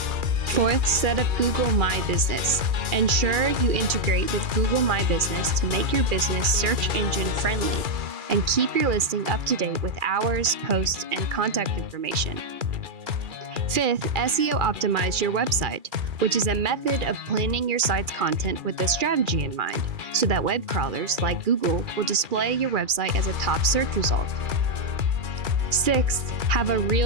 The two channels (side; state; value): left; late; 2.4 ms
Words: Fourth, set up Google My Business. Ensure you integrate with Google My Business to make your business search engine friendly and keep your listing up to date with hours, posts, and contact information. Fifth, SEO optimize your website, which is a method of planning your site's content with a strategy in mind, so that web crawlers like Google will display your website as a top search result. Sixth, have a